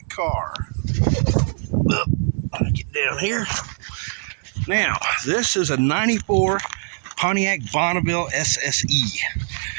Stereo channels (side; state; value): left; silent; 64 dB below the other